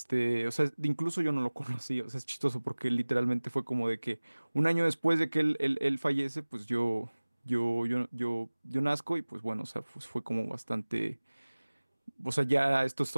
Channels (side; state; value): both; inverted; correlation -1.00